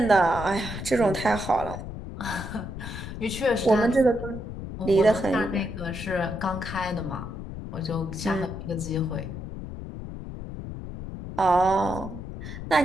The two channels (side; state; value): left; noise; rumble, 9 dB below the sound